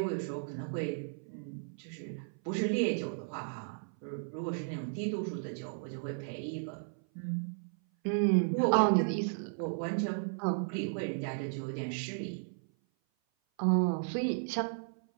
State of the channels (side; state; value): left; silent; 55 dB below the other